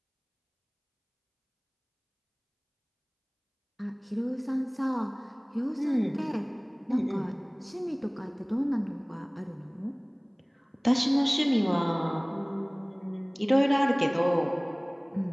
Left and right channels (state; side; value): identical; both; correlation 1.00